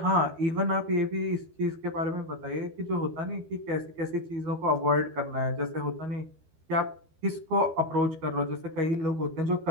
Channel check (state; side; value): late; left; 12 ms